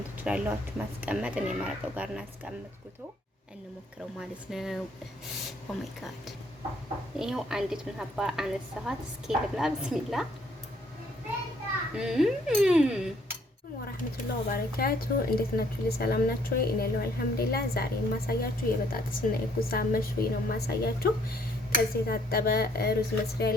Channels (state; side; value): normal; both; correlation 0.64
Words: ትችላላችሁ፣ ማስቀመጥ። እኔ መረቁ ጋር እናስቀምጥኩት እንሞክረው ማለት ነው። ኦ ማይ ጋድ ይሄው አንዲት ሀባ አነሳኋት። እስኪ ልብላ። ብስሚላ ወራህመቱላሂ ወበረካቱ። እንዴት ናችሁ? ሰላም ናችሁ? እኔ ያለው አልሐምዱሊላህ። ዛሬ የማሳያችሁ የበጣጥስና የጉዛ መሽዊ ነው የማሳያችሁ። ከዚህ የታጠበ ሩዝ መስሪያ